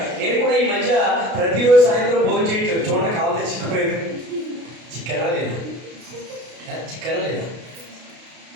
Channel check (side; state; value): left; late; 32 ms